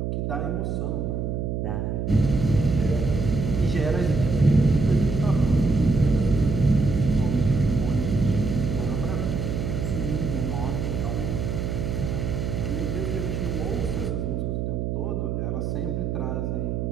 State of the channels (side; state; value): right; noise; hum, 2 dB below the sound